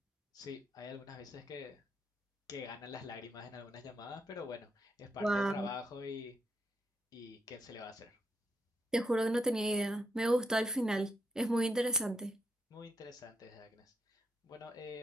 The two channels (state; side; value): normal; both; correlation 0.80